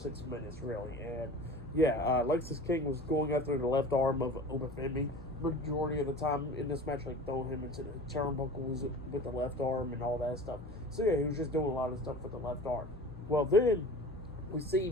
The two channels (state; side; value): normal; both; correlation 0.38